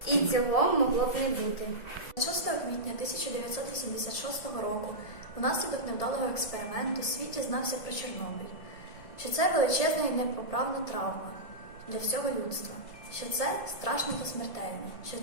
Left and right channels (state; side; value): late; right; 1.7 ms